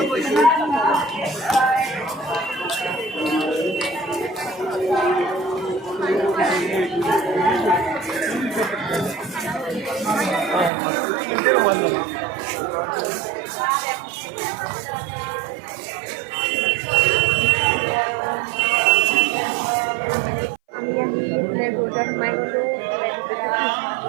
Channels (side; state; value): left; drops out; at 10.7 s